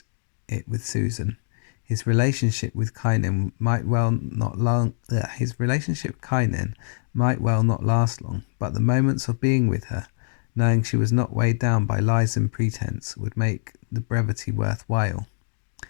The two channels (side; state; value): right; silent; digital silence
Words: it with Susan. His relationship with Kynan might well not last long, but the moments of being with her, knowing she was not weighed down by lies and pretense, would make the brevity worthwhile.